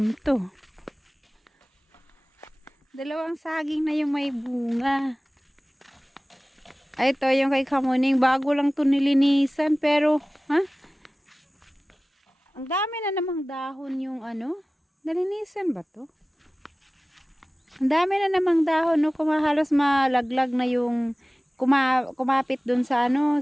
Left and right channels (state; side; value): normal; both; correlation 0.97